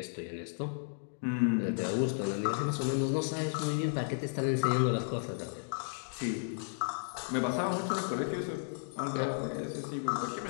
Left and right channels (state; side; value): silent; right; digital silence